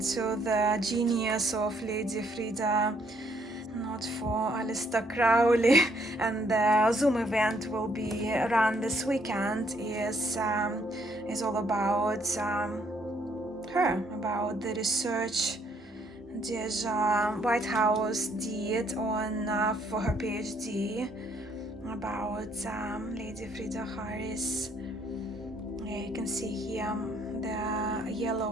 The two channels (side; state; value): both; normal; correlation 0.68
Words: the genius of Lady Frida, not for Aleister Crowley. And the Zoom event will be run this weekend is all about her, about the research that White House did on for her PhD about Lady Frida Harris. Yeah, you can see here the